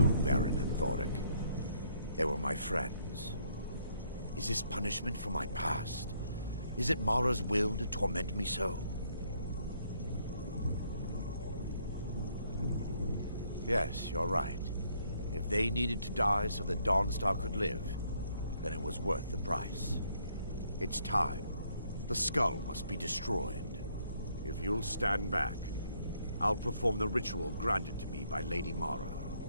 Varen and Thoric. They were my friends. Is this punishment for my past? Is it Mara's will to torment me so? Yes, you're right. If they needed to die so that Dawnstar could live, then it was worth the price. It's time. The skull must be destroyed. If you'll stand back, I'll perform the ritual granted to me by Lady Mara.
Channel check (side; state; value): both; inverted; correlation -0.69